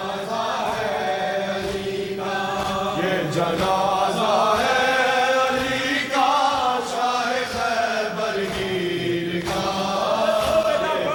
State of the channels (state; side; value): identical; both; correlation 1.00